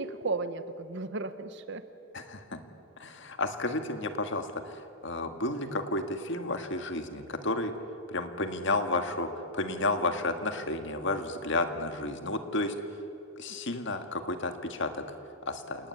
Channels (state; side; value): normal; both; correlation -0.13